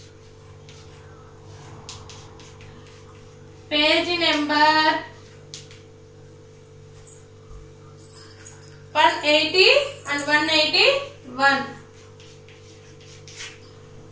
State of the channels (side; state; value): both; identical; correlation 1.00